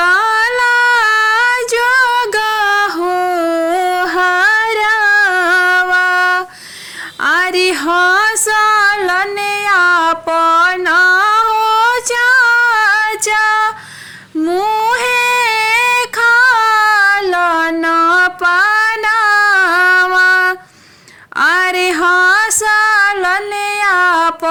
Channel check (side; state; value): both; identical; correlation 1.00